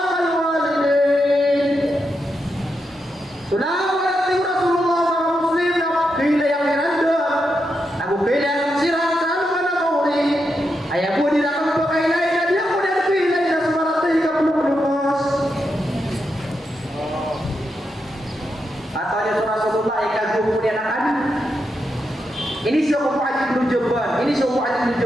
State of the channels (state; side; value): normal; both; correlation 0.85